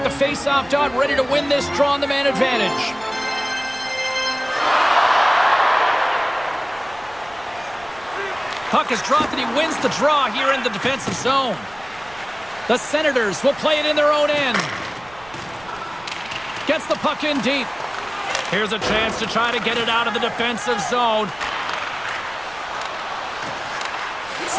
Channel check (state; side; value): noise; right; rumble, 23 dB below the sound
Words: the face-off dot, ready to win this draw on the man advantage. Puck is dropped and he wins the draw here in the defensive zone. The Senators will play it in their own end. Gets the puck in deep. Here's a chance to try to get it out of the defensive zone.